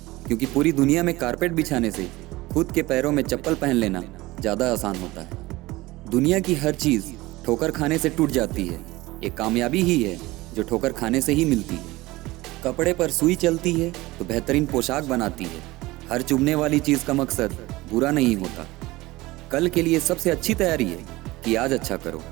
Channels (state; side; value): quieter; left; 19.7 dB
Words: क्योंकि पूरी दुनिया में कारपेट बिछाने से खुद के पैरों में चप्पल पहन लेना ज़्यादा आसान होता है। दुनिया की हर चीज़ ठोकर खाने से टूट जाती है, एक कामयाबी ही है जो ठोकर खाने से ही मिलती है। कपड़े पर सुई चलती है तो बेहतरीन पोशाक बनाती है। हर चुभने वाली चीज़ का मकसद बुरा नहीं होता। कल के लिए सबसे अच्छी तैयारी है कि आज अच्छा करो।